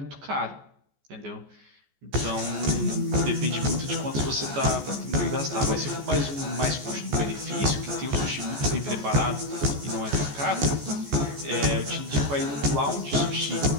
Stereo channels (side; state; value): left; late; 14 ms